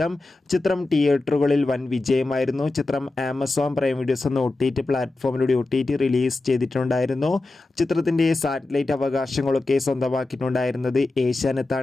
ചിത്രം തിയേറ്ററുകളിൽ വൻ വിജയമായിരുന്നു. ചിത്രം ആമസോൺ പ്രൈം വീഡിയോസ് എന്ന OTT പ്ലാറ്റ്ഫോമിലൂടെ OTT റിലീസ് ചെയ്തിട്ടുണ്ടായിരുന്നു. ചിത്രത്തിൻ്റെ സാറ്റലൈറ്റ് അവകാശങ്ങളൊക്കെ സ്വന്തമാക്കിയിട്ടുണ്ടായിരുന്നത്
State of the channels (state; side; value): quieter; right; 3.1 dB